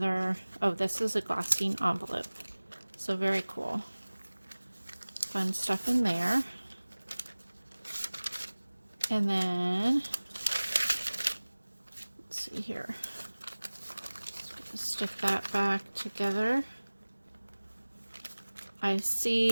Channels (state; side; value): inverted; both; correlation -1.00